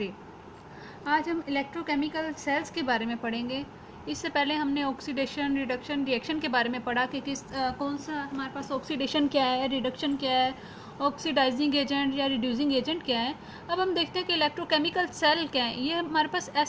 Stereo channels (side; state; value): both; identical; correlation 1.00